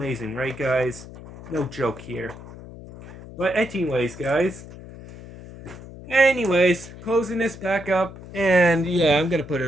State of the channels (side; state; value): left; noise; hum, 16 dB below the sound